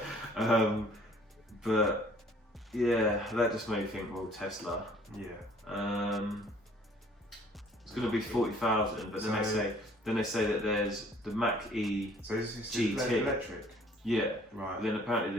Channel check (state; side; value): normal; both; correlation 0.56